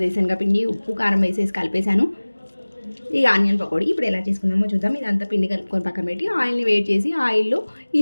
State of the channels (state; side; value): inverted; both; correlation -1.00